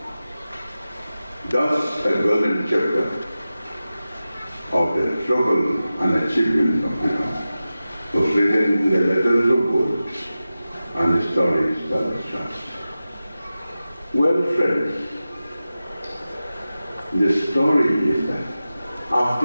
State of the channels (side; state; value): both; inverted; correlation -0.94